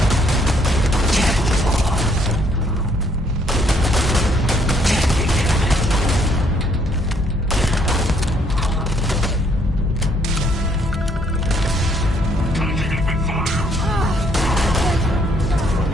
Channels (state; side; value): normal; both; correlation 0.67